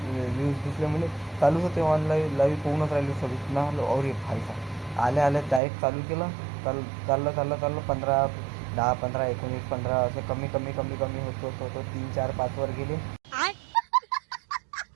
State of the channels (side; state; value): left; drops out; at 5.6 s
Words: व्ह्यूज दिसले म्हणजे चालूच होते. ऑनलाईन लाईव्ह पोहूनच राहिले 26 ना. और एक भाईचा आल्या डायरेक्ट चालू केलं. चाललं 15, 10, 15, 19, 15 असे कमी होतो 3, 4, 5 वर गेले.